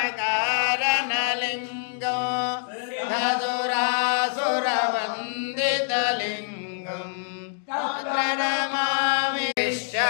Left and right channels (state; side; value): silent; right; digital silence